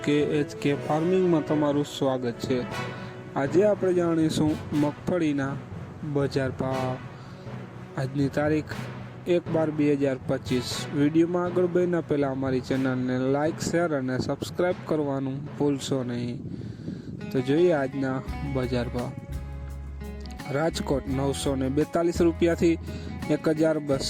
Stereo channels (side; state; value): both; identical; correlation 1.00